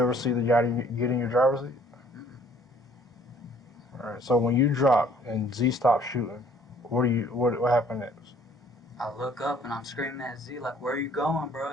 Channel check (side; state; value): both; normal; correlation 0.58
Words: see the guy get in your driver's seat? Mm-mm. All right. So when you dropped and Z stopped shooting, what happened next? I look up and I'm screaming at Z, like, where are you going, bro?